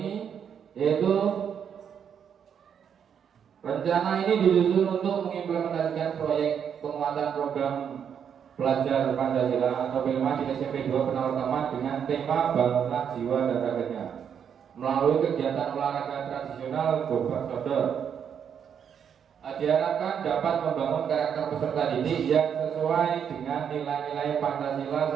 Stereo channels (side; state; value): left; quieter; 7.9 dB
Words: yaitu Rencana ini disusun untuk mengimplementasikan proyek penguatan program belajar Pancasila atau P5 di SMP 2 Penawartama dengan tema bangunlah jiwa dan raganya melalui kegiatan olahraga tradisional Gobak Sodor. Diharapkan dapat membangun karakter peserta didik yang sesuai dengan nilai-nilai Pancasila